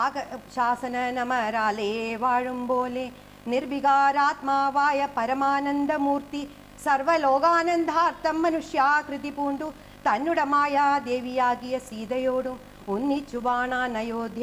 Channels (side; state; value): both; identical; correlation 1.00